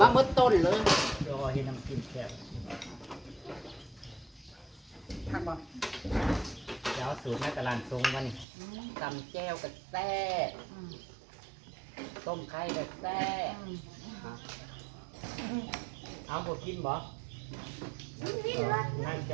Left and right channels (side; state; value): left; drops out; at 8.5 s